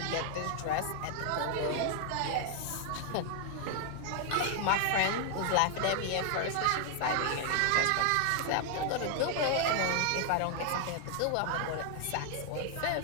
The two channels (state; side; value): different; both; correlation 0.00